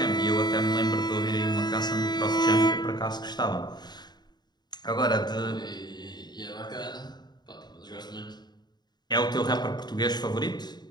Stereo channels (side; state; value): right; late; 0.20 ms